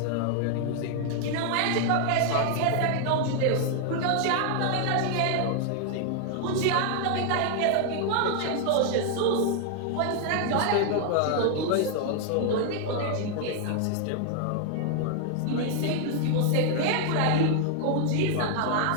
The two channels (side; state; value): both; different; correlation 0.00